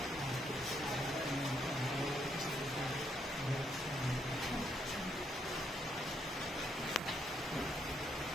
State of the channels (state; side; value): normal; both; correlation 0.75